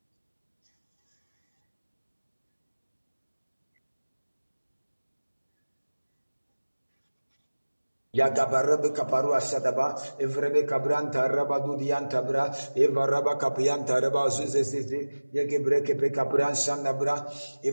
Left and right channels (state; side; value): inverted; both; correlation -1.00